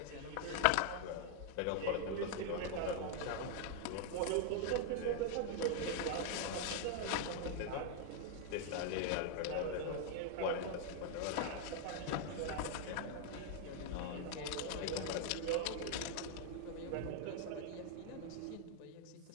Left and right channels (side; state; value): both; different; correlation 0.00